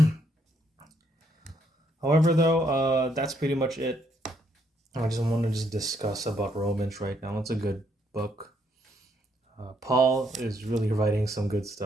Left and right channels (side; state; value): both; normal; correlation 0.72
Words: However, though, that's pretty much it. I just want to just discuss about Romans right now. It's a good book. Paul is really writing some good